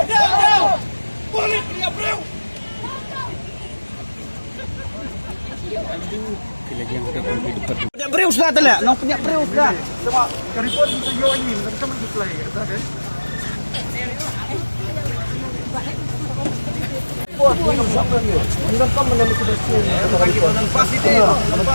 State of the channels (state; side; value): inverted; both; correlation -1.00